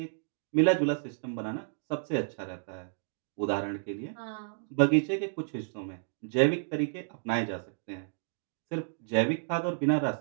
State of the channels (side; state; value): left; silent; digital silence